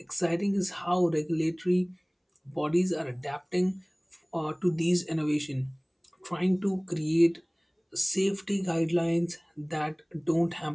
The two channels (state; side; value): identical; both; correlation 1.00